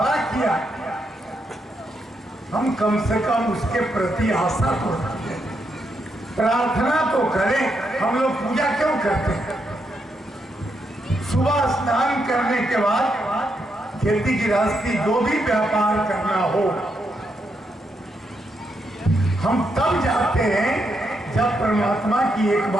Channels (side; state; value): both; normal; correlation 0.80